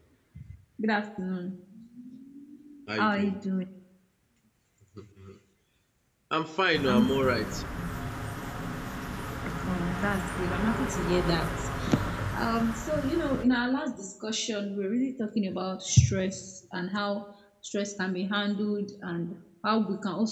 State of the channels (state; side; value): identical; both; correlation 1.00